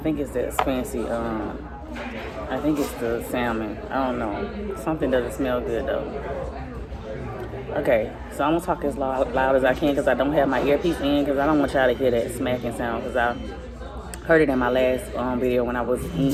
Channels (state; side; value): identical; both; correlation 1.00